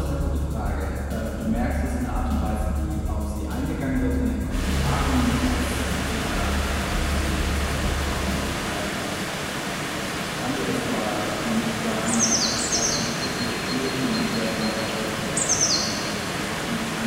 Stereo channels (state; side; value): identical; both; correlation 1.00